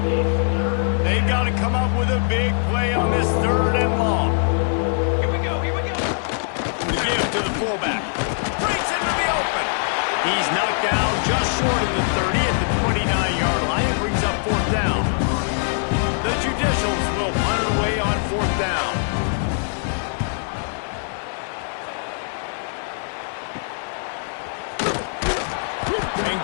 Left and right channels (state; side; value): silent; right; 64 dB below the other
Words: They've got to come up with a big play on this 3rd and long. Here we go, here we go. The give to the fullback. Breaks into the open. He's knocked down just short of the 30 at the 29-yard line. It brings up 4th down. The Judicials will punt it away on 4th down. And